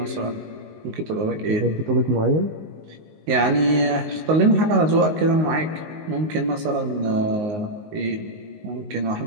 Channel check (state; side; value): late; left; 19 ms